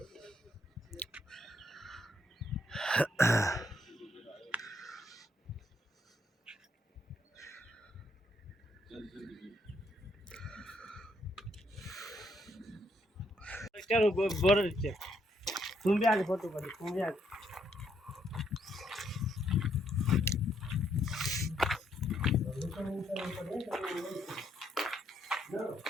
चलो बॉर्डर चेक तुम भी आगे फोटो कर तुम भी आगे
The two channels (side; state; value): both; normal; correlation 0.72